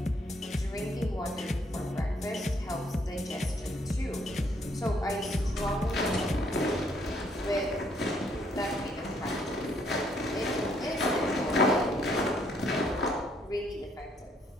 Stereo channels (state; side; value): normal; both; correlation 0.68